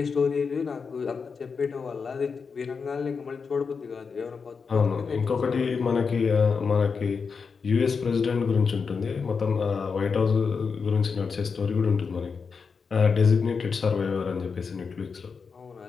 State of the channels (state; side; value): quieter; right; 5.4 dB